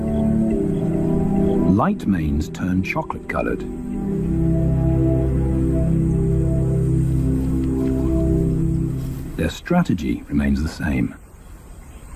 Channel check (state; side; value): identical; both; correlation 1.00